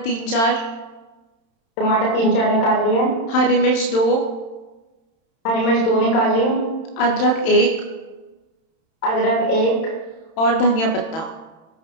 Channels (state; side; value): late; right; 31 ms